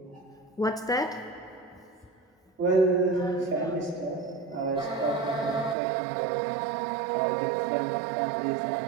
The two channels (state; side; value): drops out; left; at 5.8 s